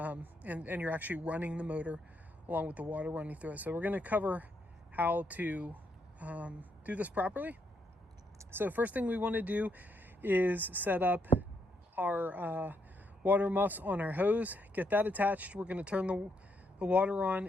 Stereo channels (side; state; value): both; normal; correlation 0.77